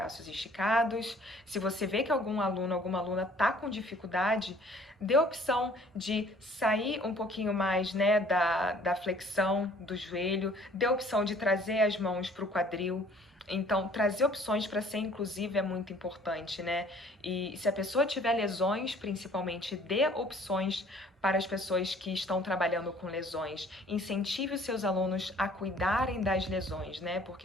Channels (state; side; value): normal; both; correlation 0.55